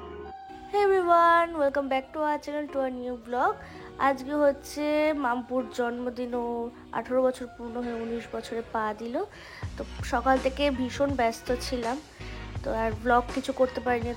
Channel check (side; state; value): both; identical; correlation 1.00